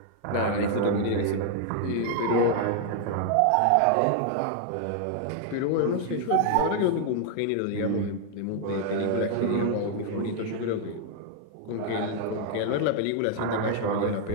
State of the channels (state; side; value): different; both; correlation 0.00